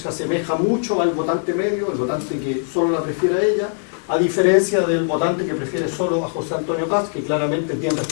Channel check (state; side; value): silent; right; 65 dB below the other